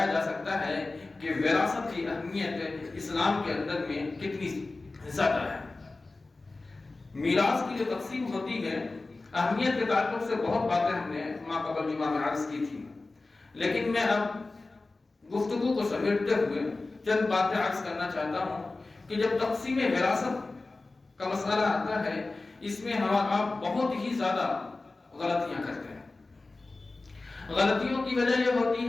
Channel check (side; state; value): right; quieter; 3.4 dB